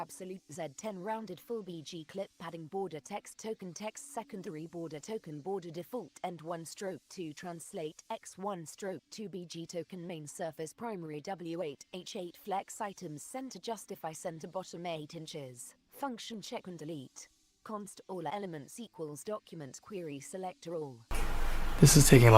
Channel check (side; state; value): both; identical; correlation 1.00